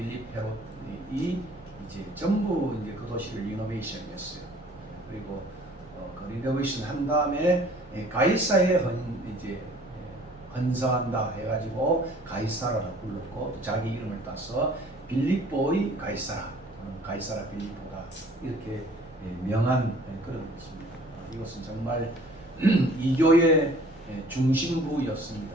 헤롯이 이제 전부 이제 그 도시를 리노베이션했어요. 그리고 그 리노베이션 한 다음에 가이사에 이제 헌사한다 해가지고 가이사라라고 불렀고, 자기 이름을 따서 빌립보의 가이사라, 가이사라 빌립보다 이렇게 명한 그런 것입니다. 이것은 정말 이교의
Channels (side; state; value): both; normal; correlation 0.52